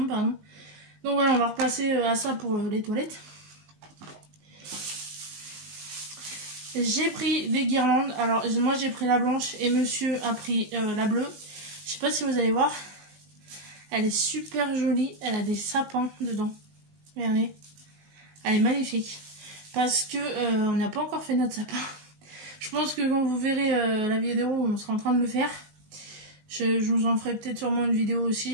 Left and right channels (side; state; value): left; late; 20 ms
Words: pardon. Donc voilà, on va repasser à ça pour les toilettes. J'ai pris des guirlandes. Alors moi j'ai pris la blanche et monsieur a pris la bleue. Je sais pas si vous allez voir. Elle est super jolie. Elle a des sapins dedans. Regardez. Elle est magnifique. Parce que on n'a pas encore fait notre sapin. Je pense que quand vous verrez la vidéo, on sera en train de le faire. Je vous en ferai peut-être sûrement une vidéo